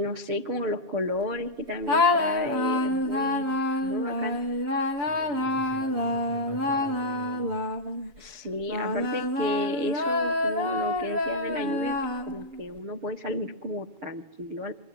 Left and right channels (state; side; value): late; left; 7.1 ms